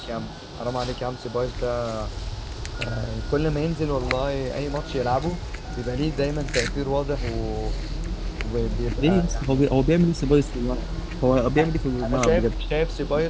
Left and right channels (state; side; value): identical; both; correlation 1.00